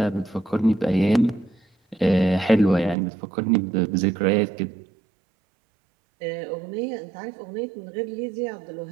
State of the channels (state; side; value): drops out; left; at 3.0 s